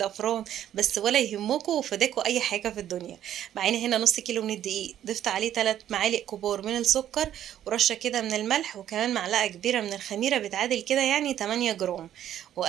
بس ولا يهمكم وفداكوا أي حاجة في الدنيا. معانا هنا نص كيلو من الدقيق، ضفت عليه 3 معالق كبار من السكر، ورشة كده من الملح، وكمان معلقة كبيرة من الخميرة بتعادل كده يعني 8 جرام.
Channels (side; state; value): left; quieter; 11.2 dB